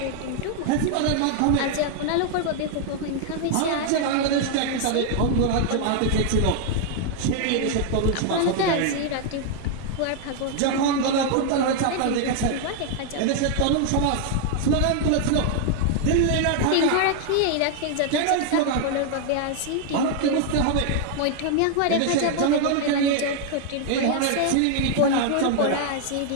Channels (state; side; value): different; both; correlation 0.00